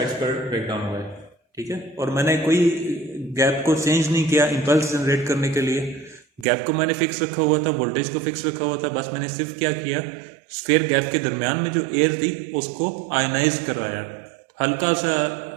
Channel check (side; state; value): left; drops out; at 6.5 s